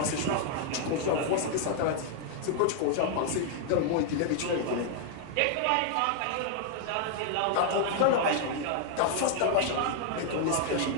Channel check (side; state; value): both; different; correlation 0.00